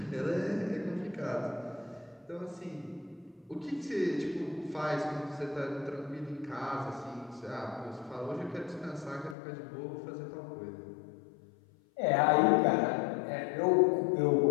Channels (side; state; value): right; drops out; at 9.3 s